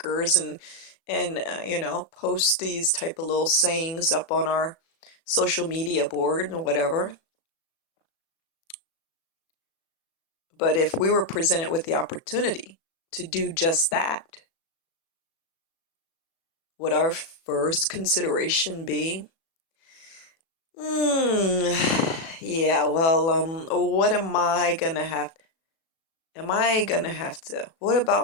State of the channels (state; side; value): late; right; 36 ms